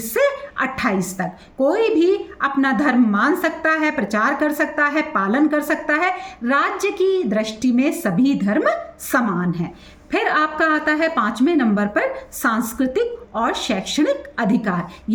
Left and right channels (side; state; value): both; identical; correlation 1.00